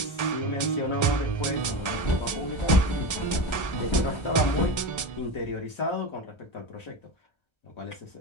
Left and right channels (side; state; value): right; late; 1.3 ms